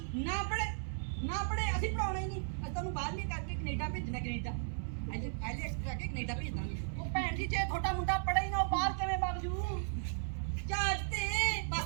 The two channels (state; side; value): silent; left; digital silence